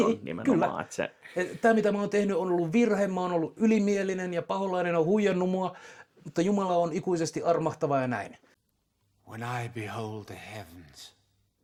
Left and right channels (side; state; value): both; identical; correlation 1.00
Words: nimenomaan. Kyllä. Tämä, mitä mä oon tehnyt, on ollut virhe, mä oon ollut ylimielinen ja paholainen on huijannut mua, mutta Jumala on ikuisesti armahtava ja näin. When I behold the heavens,